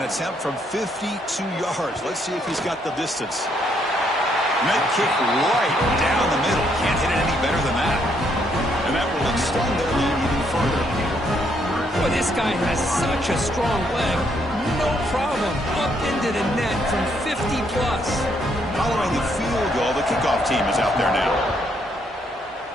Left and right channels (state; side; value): normal; both; correlation 0.72